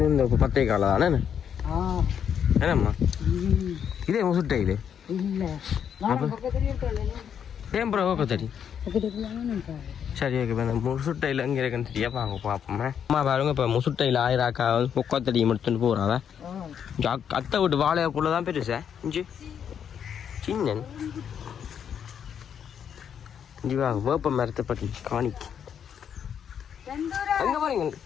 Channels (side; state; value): right; quieter; 8.3 dB